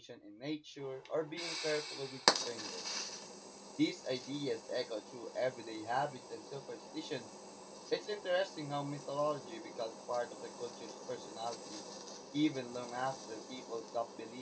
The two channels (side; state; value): both; identical; correlation 1.00